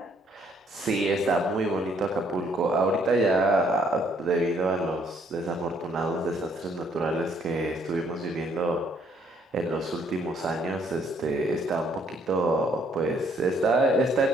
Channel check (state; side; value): normal; both; correlation 0.66